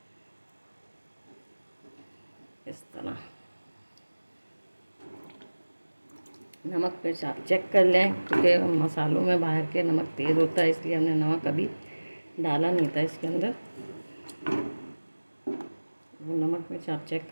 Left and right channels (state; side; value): inverted; both; correlation -1.00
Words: इस तरह नमक मिर्च आप चेक कर लें, क्योंकि मसालों में बाहर के नमक तेज़ होता है, इसलिए हमने नमक अभी डाला नहीं था इसके अंदर। वो नमक मिर्च आप चेक